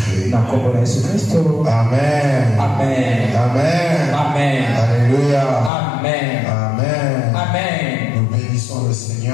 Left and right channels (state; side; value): drops out; right; at 5.7 s